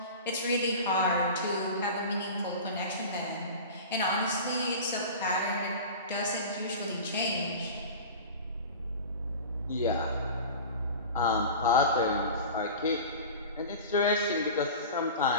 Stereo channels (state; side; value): inverted; both; correlation -0.34